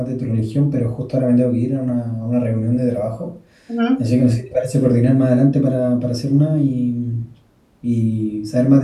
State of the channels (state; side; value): identical; both; correlation 1.00